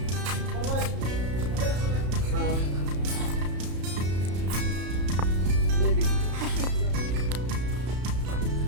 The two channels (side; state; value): left; late; 33 ms